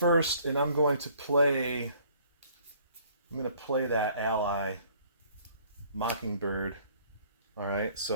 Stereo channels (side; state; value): both; inverted; correlation -0.58